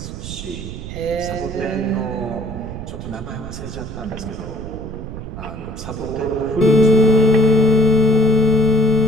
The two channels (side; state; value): right; noise; rumble, 10 dB below the sound